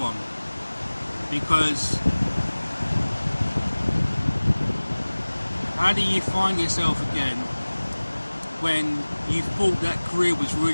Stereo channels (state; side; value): inverted; both; correlation -1.00